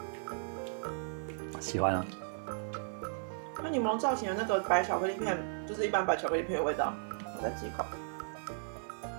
喜欢啊。它柠檬造型的那个白巧克力片，就是一般白巧克力片的味道。我再吃一口。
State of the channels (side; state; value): left; silent; digital silence